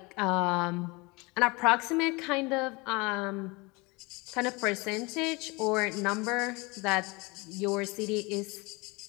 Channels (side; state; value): right; quieter; 26.0 dB